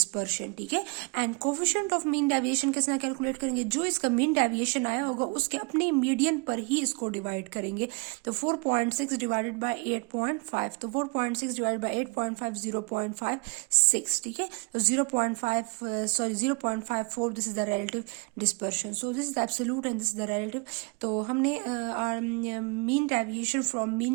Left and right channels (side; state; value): left; quieter; 31.8 dB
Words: ठीक है। And coefficient of mean deviation किस तरह कैलकुलेट करेंगे, जो इसका मीन डेविएशन आया होगा उसके अपने मीडियन पर ही इसको डिवाइड करेंगे। तो 4.6 डिवाइडेड बाय 8.5, तो 4.6 डिवाइडेड बाय 8.5 0.56, ठीक है। तो 0.54 this is the relative dispersion. So this is the absolute and this is the relative. तो हमने mean deviation from